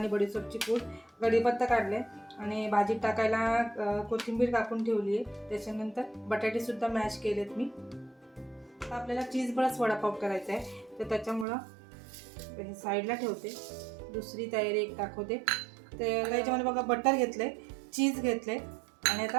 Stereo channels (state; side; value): drops out; left; at 11.5 s